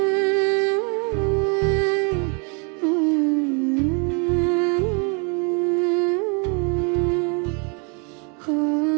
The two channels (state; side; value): quieter; left; 35.8 dB